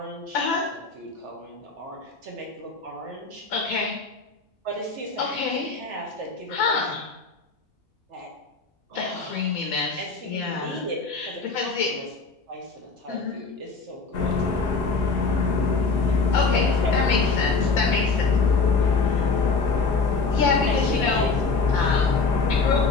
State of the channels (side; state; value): right; quieter; 4.3 dB